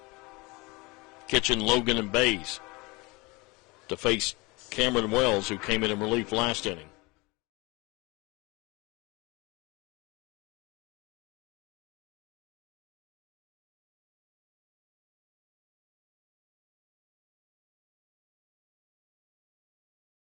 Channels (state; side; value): quieter; right; 25.1 dB